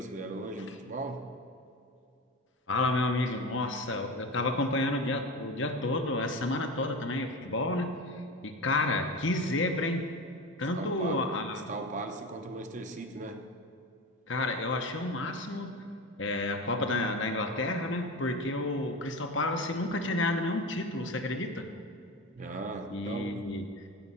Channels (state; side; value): normal; both; correlation 0.26